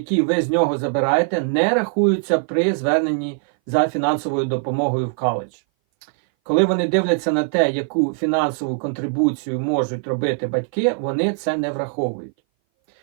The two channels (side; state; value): left; silent; 59 dB below the other